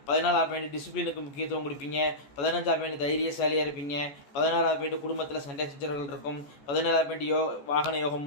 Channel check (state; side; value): late; right; 14 ms